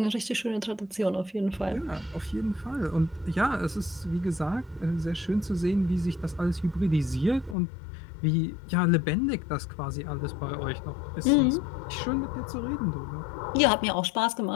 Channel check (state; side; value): drops out; right; at 7.6 s